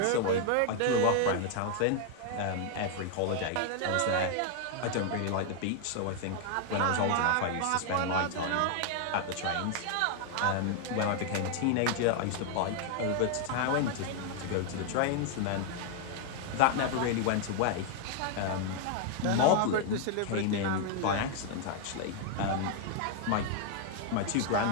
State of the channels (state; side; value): different; both; correlation 0.00